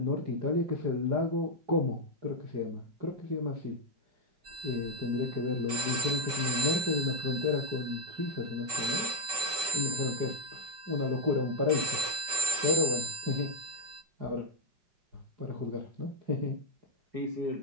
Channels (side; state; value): left; late; 5.2 ms